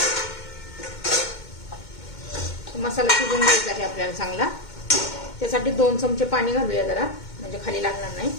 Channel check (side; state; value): right; late; 2.2 ms